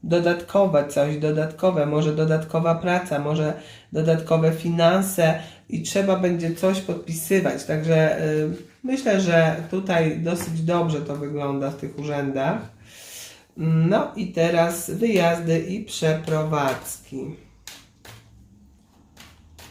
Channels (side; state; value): both; identical; correlation 1.00